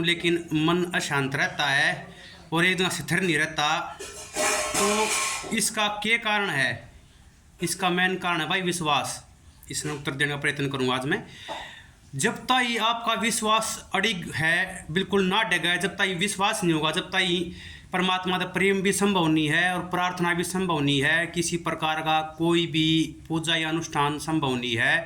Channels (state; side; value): identical; both; correlation 1.00